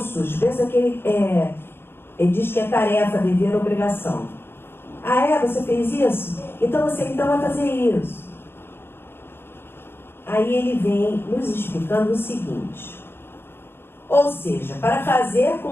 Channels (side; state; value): right; late; 0.11 ms